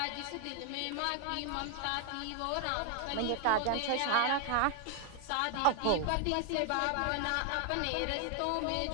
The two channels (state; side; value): different; both; correlation 0.00